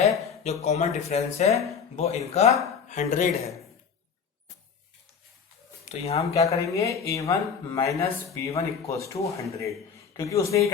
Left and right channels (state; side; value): quieter; right; 6.5 dB